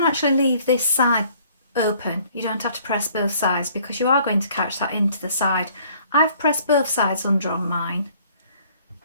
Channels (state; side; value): inverted; both; correlation -0.58